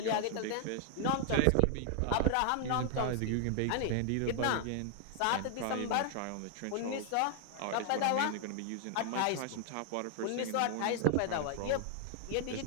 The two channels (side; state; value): both; different; correlation 0.00